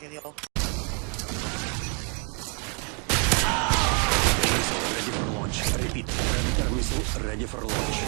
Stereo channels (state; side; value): quieter; left; 37.0 dB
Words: Ready for launch. Repeat. Predator missile ready for